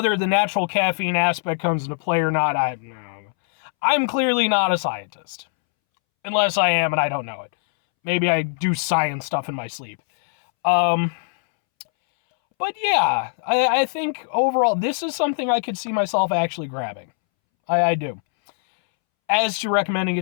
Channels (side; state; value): right; silent; 64 dB below the other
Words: the natural caffeine aspect comes into play or not, I'm clearly not a scientist. Unless I am and I don't know it. Maybe I do science stuff in my sleep. But yeah, I think overall, this is something I could see myself actually grabbing. I do. As to recommending